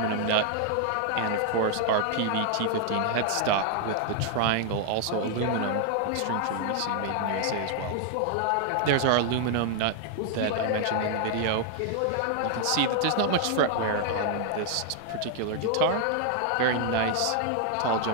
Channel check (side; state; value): both; different; correlation 0.00